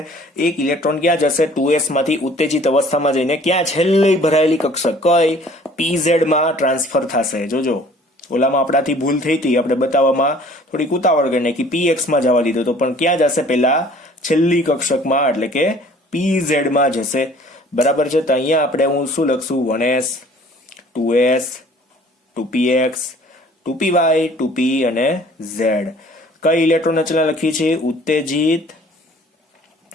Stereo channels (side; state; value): both; normal; correlation 0.52